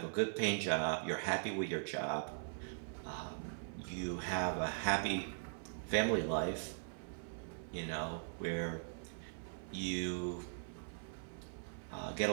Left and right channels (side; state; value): left; silent; 51 dB below the other